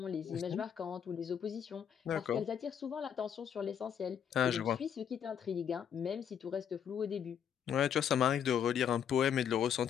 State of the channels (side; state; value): right; quieter; 8.5 dB